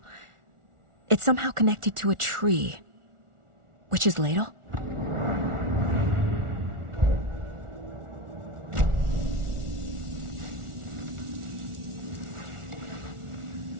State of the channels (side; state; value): left; late; 1.4 ms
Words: It's somehow connected to a tree. Witch's Ladle?